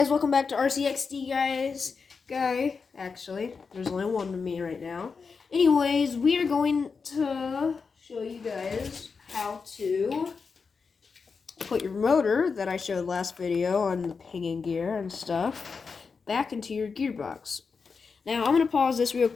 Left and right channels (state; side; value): quieter; right; 5.1 dB